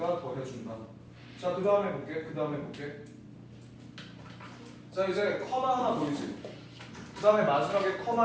더 해준다. 자, 그 다음에 볼게. 자, 이제 커마 하나 보이지? 그 다음에 마지막에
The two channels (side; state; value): both; identical; correlation 1.00